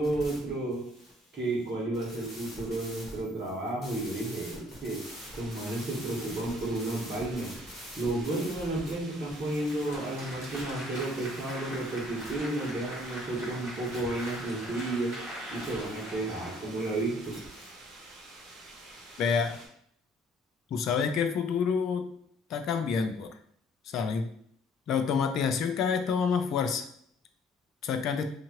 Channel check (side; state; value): both; normal; correlation 0.59